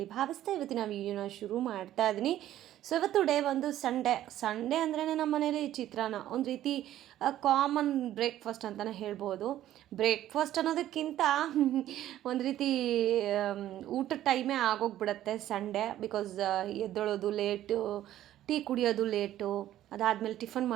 ಭಾವಿಸ್ತಾ ಇವತ್ತಿನ ವೀಡಿಯೋನ ಶುರು ಮಾಡ್ತಾ ಇದ್ದೀನಿ. ಸೊ ಇವತ್ತು ಡೇ ಒಂದು ಸಂಡೇ ಅಂದ್ರೇ ನಮ್ಮ ಮನೇಲಿ ಚಿತ್ರಾನ್ನ ಒಂದು ರೀತಿ ಕಾಮನ್ ಬ್ರೇಕ್ಫಾಸ್ಟ್ ಅಂತಲೇ ಹೇಳ್ಬೋದು. ಬ್ರೇಕ್ಫಾಸ್ಟ್ ಅನ್ನೋದಕ್ಕಿಂತ ಒಂದು ರೀತಿ ಊಟದ ಟೈಮೇ ಆಗೋಗ್ಬಿಡುತ್ತೆ ಸಂಡೇ. ಬಿಕಾಸ್ ಎದ್ದೊಳೋದು ಲೇಟು, ಟೀ ಕುಡಿಯೋದು ಲೇಟು, ಅದಾದಮೇಲೆ ಟಿಫನ್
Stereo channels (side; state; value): left; quieter; 12.9 dB